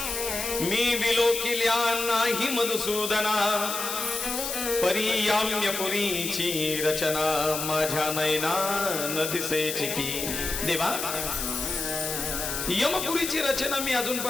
मी विलोकिल्या नाही मधुसूदना, परियाम्य पुरीची रचना माझ्या नयना न दिसेची की. देवा यमपुरीची रचना मी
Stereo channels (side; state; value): left; noise; hiss, 4 dB below the sound